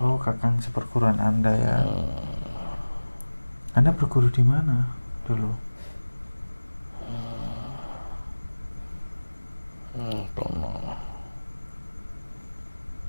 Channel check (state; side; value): inverted; both; correlation -1.00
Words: Oh, kakang seperguruan Anda ya. Anda berguru di mana dulu?